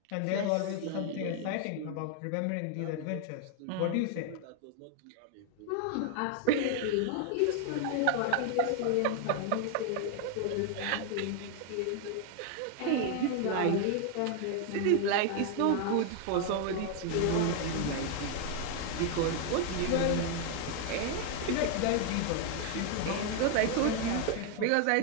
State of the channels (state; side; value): different; both; correlation 0.00